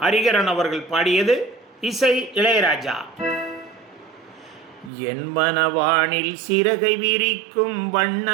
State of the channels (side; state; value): left; drops out; at 4.9 s